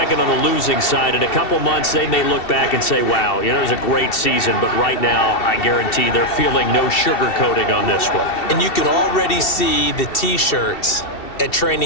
on the losing side. In a couple months, they may look back and say, wow, you know, it was a great season. But right now, I guarantee they're feeling no sugarcoating on this one. And you can already see the T-shirts at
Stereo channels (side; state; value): right; late; 2.7 ms